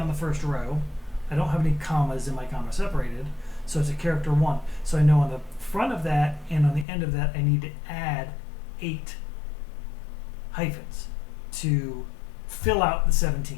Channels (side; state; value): right; drops out; at 6.9 s